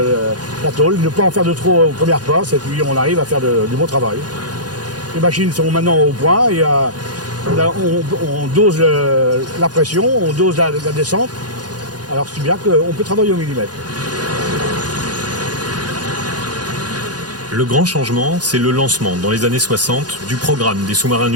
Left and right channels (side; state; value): left; late; 0.69 ms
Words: la tôle, ne pas en faire de trop aux premières passes, et puis on arrive à faire du bon travail. Les machines sont maintenant au point, et on dose la pression, on dose la descente, alors c'est bien qu'on peut travailler au millimètre. Le grand changement, c'est le lancement, dans les années 60, du programme des sous-marins